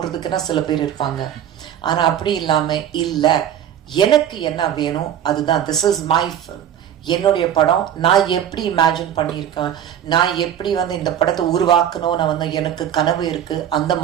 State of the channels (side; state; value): left; quieter; 10.0 dB